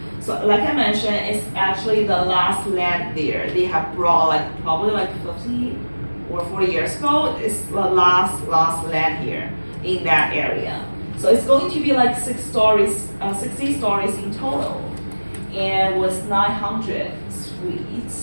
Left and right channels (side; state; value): both; inverted; correlation -1.00